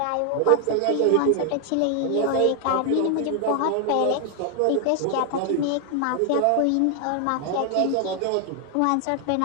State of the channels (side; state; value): both; different; correlation 0.00